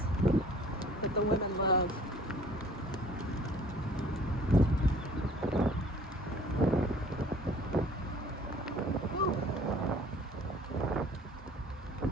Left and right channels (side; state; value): both; normal; correlation 0.52